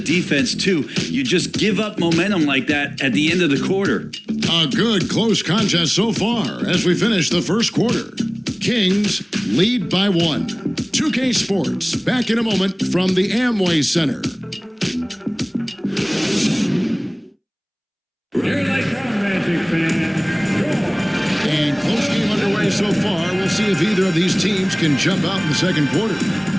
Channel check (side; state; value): both; identical; correlation 1.00